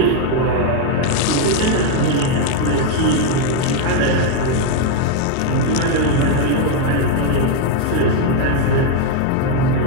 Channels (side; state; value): both; different; correlation 0.01